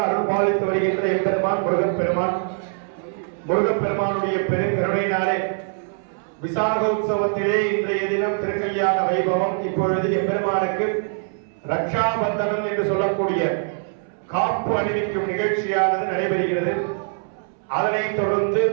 அருள் பாலித்து வருகின்ற எம்பெருமான் முருகப்பெருமானுடைய பெருங்கருணையினாலே விசாக உற்சவத்திலே இன்றைய தினம் திருக்கல்யாண வைபவம். இப்பொழுது எம்பெருமானுக்கு ரக்ஷாபந்தனம் என்று சொல்லக்கூடிய காப்பு அணிவிக்கும் நிகழ்ச்சியானது நடைபெறுகிறது. அதனைத் தொடர்ந்து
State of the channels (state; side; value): silent; left; 64 dB below the other